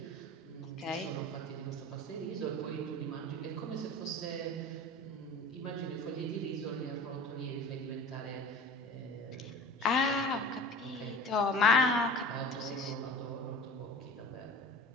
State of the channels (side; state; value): both; normal; correlation 0.38